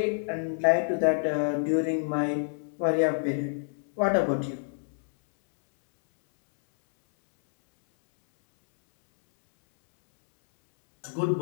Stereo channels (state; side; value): silent; right; 60 dB below the other